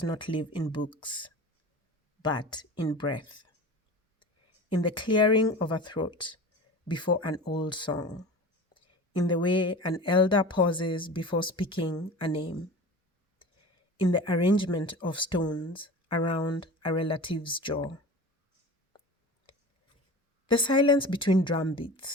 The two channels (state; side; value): normal; both; correlation 0.35